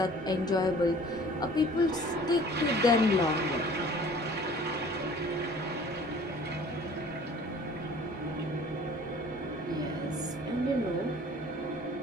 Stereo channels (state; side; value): normal; both; correlation 0.49